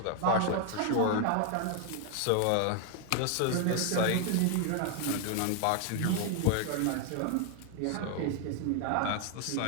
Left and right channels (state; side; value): different; both; correlation 0.00